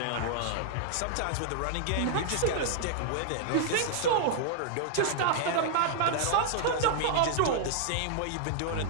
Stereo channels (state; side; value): different; both; correlation -0.01